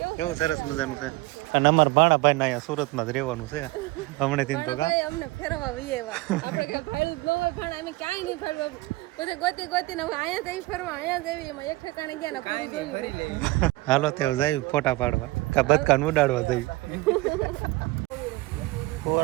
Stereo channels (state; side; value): quieter; left; 20.9 dB